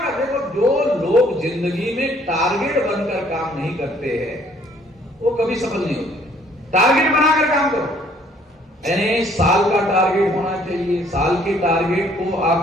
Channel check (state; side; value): normal; both; correlation 0.61